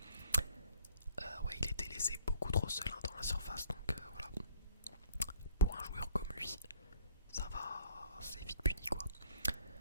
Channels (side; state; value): both; inverted; correlation -0.58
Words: Ouais, il était laissé beaucoup trop seul hein, dans la surface, donc voilà. Pour un joueur comme lui, ça va, c'est vite puni quoi.